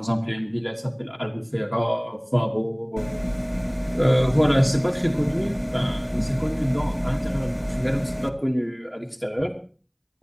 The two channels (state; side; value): identical; both; correlation 1.00